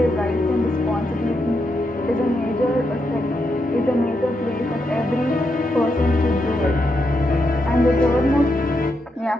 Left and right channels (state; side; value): normal; both; correlation 0.82